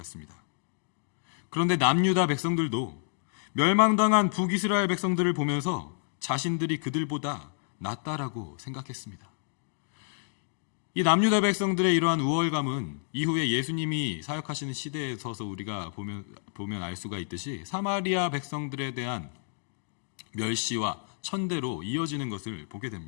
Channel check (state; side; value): silent; right; digital silence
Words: 그런데 남유다 백성들도 멸망당한 북이스라엘 백성들을 보면서 자신들이 그들보다 낫다라고 생각했습니다. 이 남유다 백성들의 이러한 우월감은 이후에 예수님이 사역하시는 시대에 서서 우리가 보면 알 수가 있듯이 사마리아 백성들에 대한 멸시와 천대로 이어지는 것을 보게